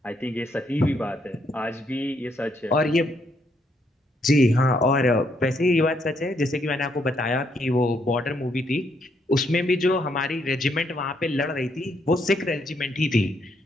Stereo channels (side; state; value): both; normal; correlation 0.74